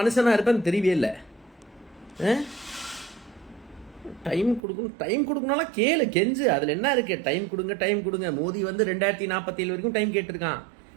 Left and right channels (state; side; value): drops out; left; at 4.6 s